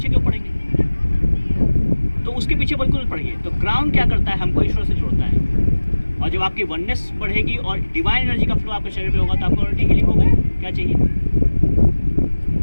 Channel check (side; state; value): both; inverted; correlation -1.00